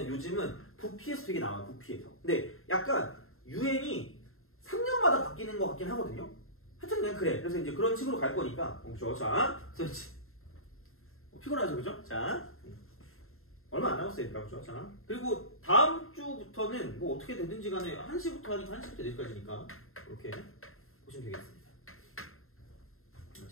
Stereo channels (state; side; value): late; right; 0.61 ms